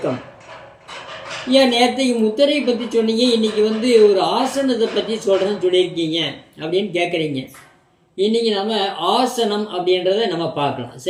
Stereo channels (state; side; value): identical; both; correlation 1.00